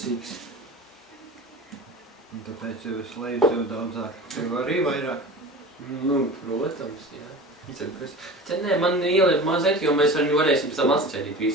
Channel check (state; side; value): normal; both; correlation 0.35